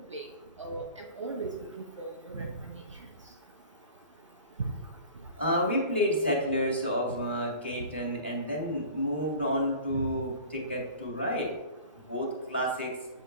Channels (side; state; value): both; inverted; correlation -0.41